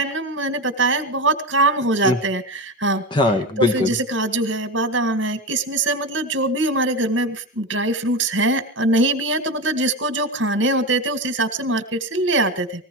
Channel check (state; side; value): normal; both; correlation 0.20